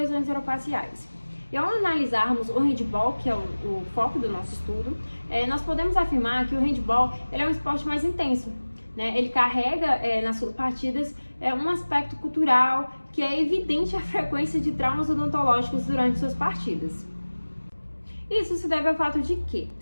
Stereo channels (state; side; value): inverted; both; correlation -1.00